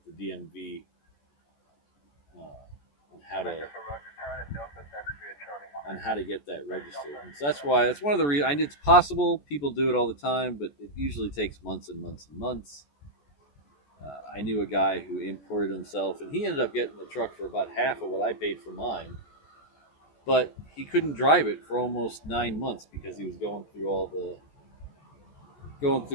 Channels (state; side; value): late; right; 14 ms